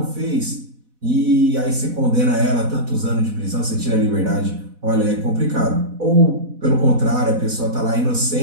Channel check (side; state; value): left; late; 4.1 ms